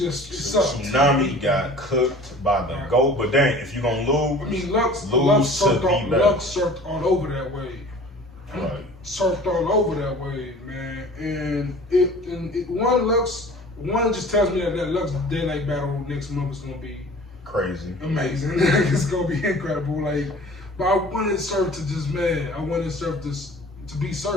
sucked. Tsunami got cooked by the GOAT, but dang, if you're gonna lose, I mean, Lux surfed all over that wave. Right. Surfed all over that wave, man. And one just tells me that Lux Daylight battle next month is gonna be crazy, amazing. It's gonna be incredible. Like. But I wanted Surf to I wanted Surf to be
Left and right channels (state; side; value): normal; both; correlation 0.45